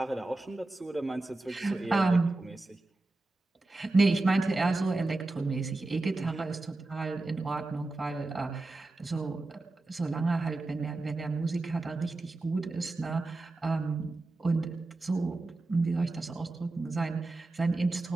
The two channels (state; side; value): quieter; left; 3.0 dB